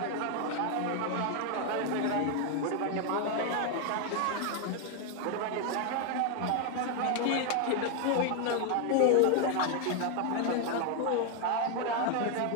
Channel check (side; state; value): both; different; correlation 0.01